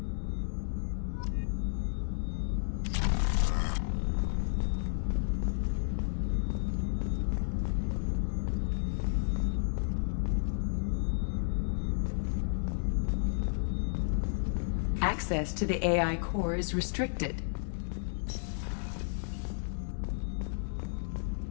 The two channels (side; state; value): right; silent; 56 dB below the other